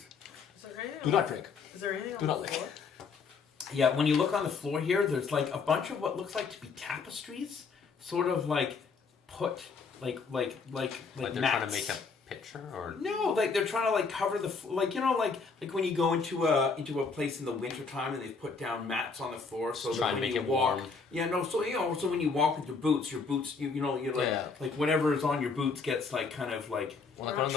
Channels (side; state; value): right; quieter; 4.9 dB